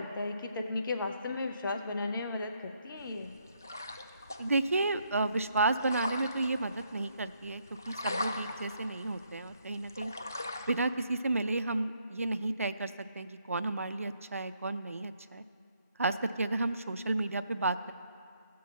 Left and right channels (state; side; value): inverted; both; correlation -0.73